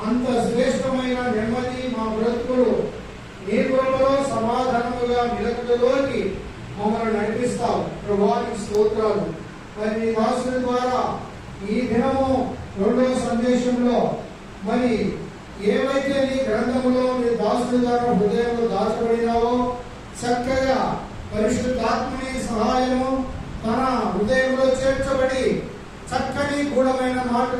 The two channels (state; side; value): identical; both; correlation 1.00